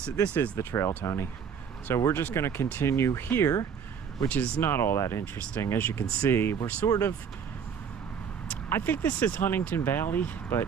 is the trail, Tony. So we're just going to continue here, which is not all that interesting. As you can see, we're sort of, I think this is Huntingdon Valley, but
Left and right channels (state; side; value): quieter; left; 7.2 dB